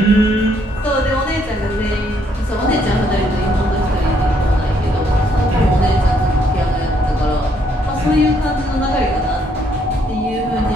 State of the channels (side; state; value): both; normal; correlation 0.70